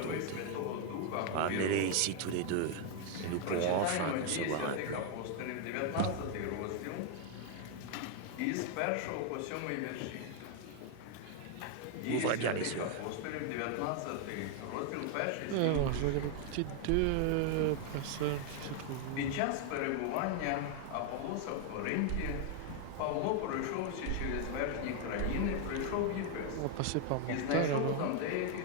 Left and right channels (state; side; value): different; both; correlation 0.01